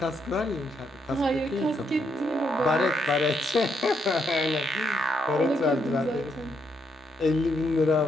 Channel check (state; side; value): normal; both; correlation 0.77